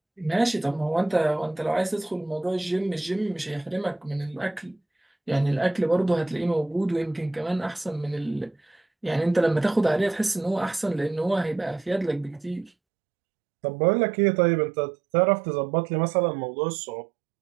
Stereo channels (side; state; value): left; drops out; at 12.7 s